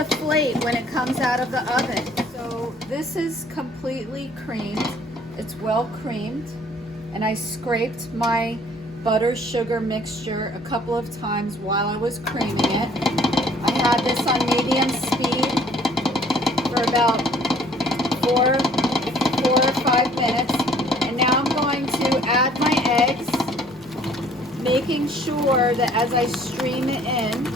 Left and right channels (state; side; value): normal; both; correlation 0.57